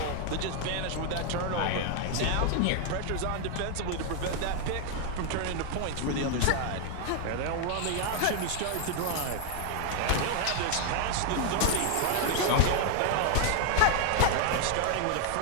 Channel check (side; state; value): both; different; correlation 0.00